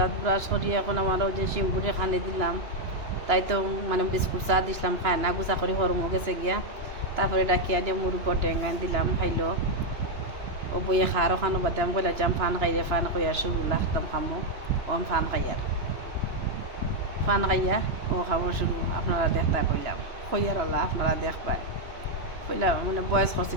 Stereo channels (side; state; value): left; late; 2.9 ms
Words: ব্রাশ করিয়ে এখন আমারও যে শিমপুরে খানি দিলাম, তাই তো মানে বিস্কুট চা দিছিলাম, খায় না গুছা করে হরমো গেছে গিয়া। তারপরে ডাকিয়া দিয়ে মুরুগ টেঙ্গান দিলাম, খাইলো। ও বইয়ে খারও খানো বাদে আমি কইলা যাম ফান খাইয়ে ফান খাইয়া শুরু লাগতাম খামো। ওম ফান খাইয়ার ফান খাইয়া ও খাবো শুরু। আপনারা দেখতা কইলাম কইয়ার ওলা আপনারা দেখবাই কইলাম মানে বয়স করছি